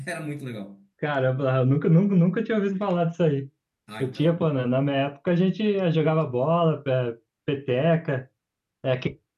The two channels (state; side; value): identical; both; correlation 1.00